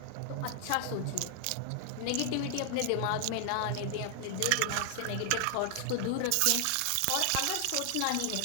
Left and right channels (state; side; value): different; both; correlation 0.00